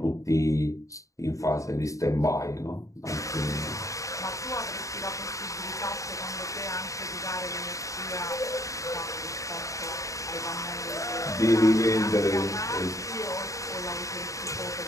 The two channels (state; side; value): late; right; 0.16 ms